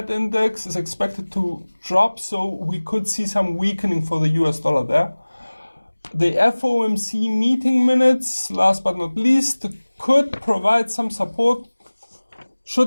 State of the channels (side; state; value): both; inverted; correlation -1.00